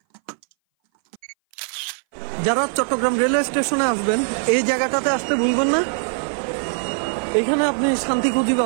যারা চট্টগ্রাম রেলওয়ে স্টেশনে আসবেন, এই জায়গাটাতে আসতে ভুলবেন না। এখানে আপনি শান্তি খুঁজি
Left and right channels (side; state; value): left; silent; 60 dB below the other